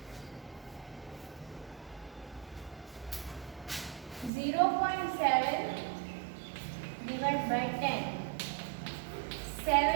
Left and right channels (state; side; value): drops out; left; at 4.3 s